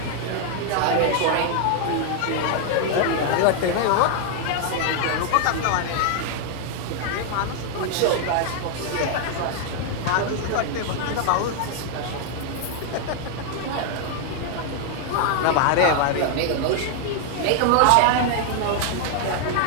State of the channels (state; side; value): different; both; correlation 0.00